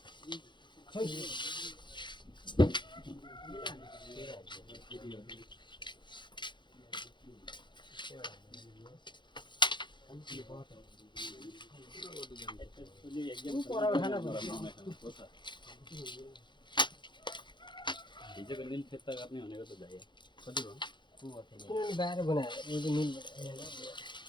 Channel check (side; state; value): right; late; 0.23 ms